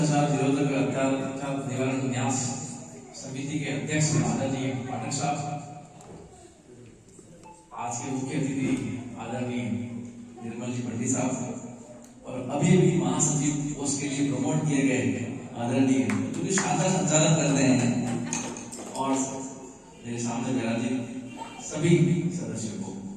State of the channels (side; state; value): both; identical; correlation 1.00